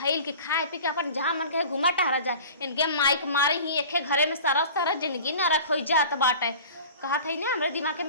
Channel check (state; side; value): inverted; both; correlation -0.41